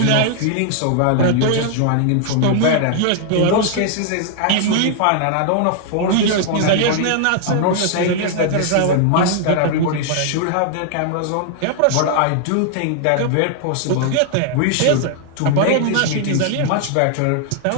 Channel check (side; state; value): both; different; correlation 0.00